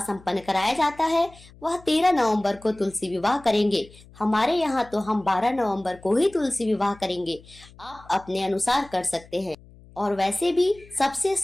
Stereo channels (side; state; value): left; noise; hum, 23 dB below the sound